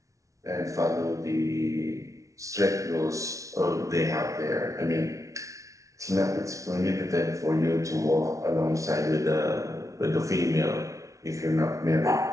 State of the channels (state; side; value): late; left; 0.15 ms